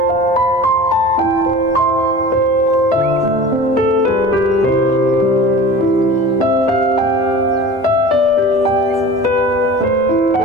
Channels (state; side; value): normal; both; correlation 0.37